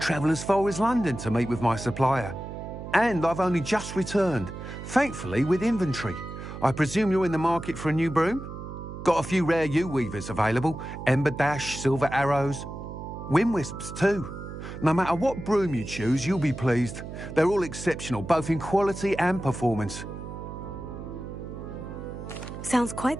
as far as London to meet with my supplier. And I've only just returned, thankfully with inventory. I presume you're in the market for a new broom? Got a few rare U-weavers available. Ember Dash, Silver Arrows. Wind Wisps too. No matter what broom you choose, you'll be pleased. They're all exceptional, both in quality and performance. Sounds quite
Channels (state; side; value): noise; right; hum, 10 dB below the sound